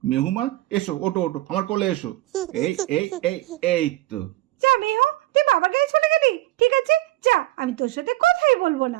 মেহু মা এসো, ওটো ওটো আমার কোলে এসো। এই এই এই এই তো। যা মেহু, তুই বাবার কাছে চলে গেলি, ঠিক আছে যা, আমি তোর সাথে কথাই বলবো না।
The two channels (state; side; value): quieter; left; 17.6 dB